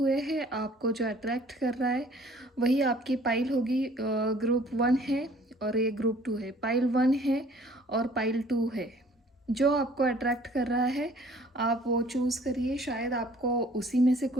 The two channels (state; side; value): normal; both; correlation 0.55